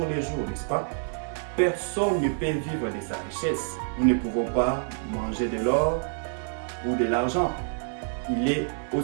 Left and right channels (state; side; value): silent; left; 60 dB below the other